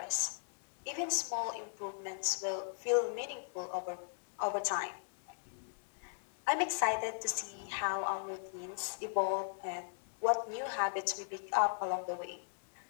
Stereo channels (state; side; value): silent; right; digital silence